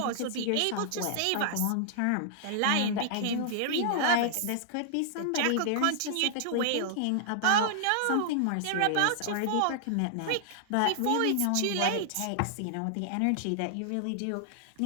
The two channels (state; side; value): different; both; correlation -0.01